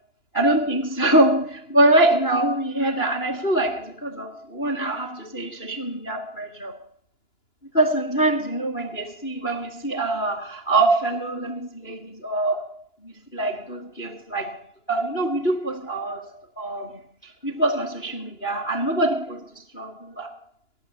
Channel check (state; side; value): late; right; 2.9 ms